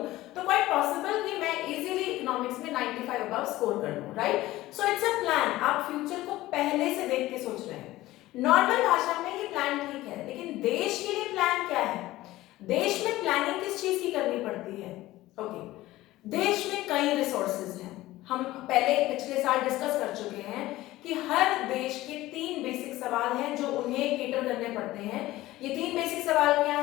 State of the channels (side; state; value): right; quieter; 17.0 dB